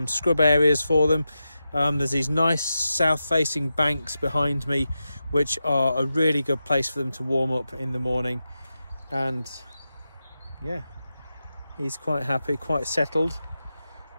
scrub areas for them. There's these nice south-facing banks behind me, which are a really good place for them to warm up in the morning. And yeah, he's quite happy, quite settled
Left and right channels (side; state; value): both; inverted; correlation -0.90